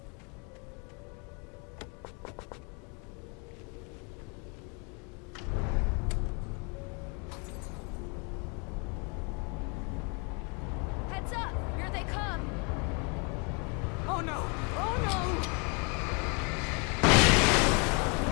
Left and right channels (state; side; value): quieter; right; 33.8 dB